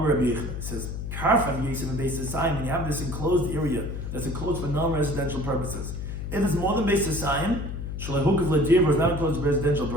Rabbi Yechon says, karfaf Yisrael and Beis Hasayim, when you have this enclosed area that's enclosed for non-residential purposes. If it's more than Beis Hasayim, Shalahukav Ladir is not enclosed for residential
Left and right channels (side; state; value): left; noise; hum, 6 dB below the sound